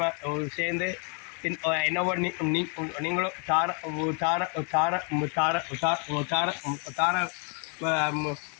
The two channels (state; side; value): quieter; right; 38.0 dB